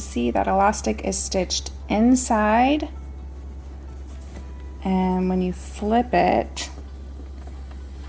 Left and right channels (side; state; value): both; identical; correlation 1.00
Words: that elastic is stitched inside, and when you flip it,